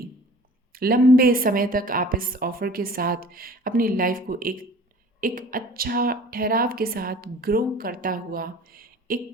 लंबे समय तक आप इस ऑफ़र के साथ अपनी लाइफ को एक एक अच्छा ठहराव के साथ ग्रो करता हुआ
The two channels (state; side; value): normal; both; correlation 0.46